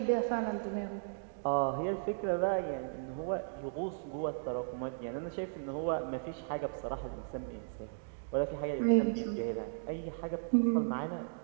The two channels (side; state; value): left; silent; digital silence